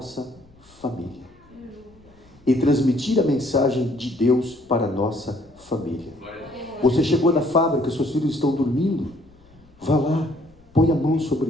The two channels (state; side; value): noise; left; rumble, 29 dB below the sound